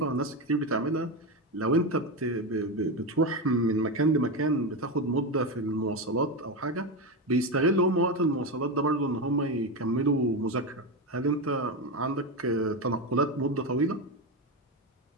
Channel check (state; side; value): normal; both; correlation 0.14